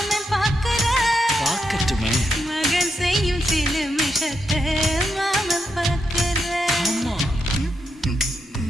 பார்க்கற பார்க்கட்டுமே. மகன் செய்யும் சில மிஷத்தை மாமன் பார்க்கற. ஆமா.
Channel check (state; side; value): normal; both; correlation 0.82